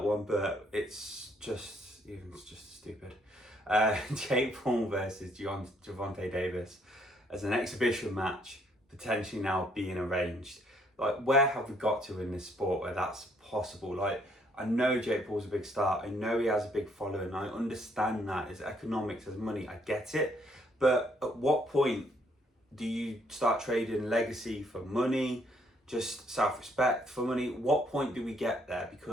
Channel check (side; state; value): both; normal; correlation 0.68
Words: one, but it's just stupid. Jake Paul versus Gervonta Davis as an exhibition match, potentially now being arranged. Like, where have we got to in this sport where that's possible? Like, I know Jake Paul's a big star. I know he has a big following. I understand that. It's economics, it's money. I get it. But at what point do you start trading legacy for money, just self-respect for money? What point do we get there?